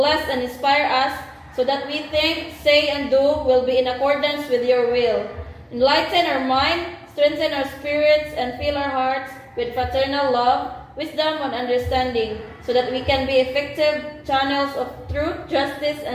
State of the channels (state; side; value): identical; both; correlation 1.00